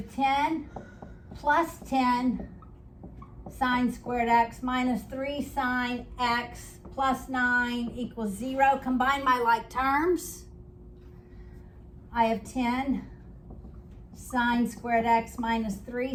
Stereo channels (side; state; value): both; identical; correlation 1.00